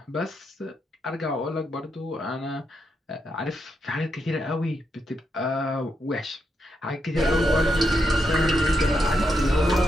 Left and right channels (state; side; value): normal; both; correlation 0.82